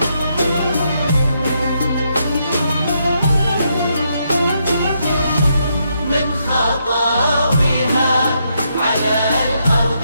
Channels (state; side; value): inverted; both; correlation -0.78